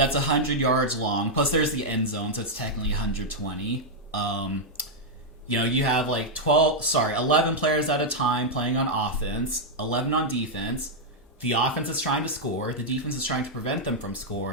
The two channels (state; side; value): normal; both; correlation -0.03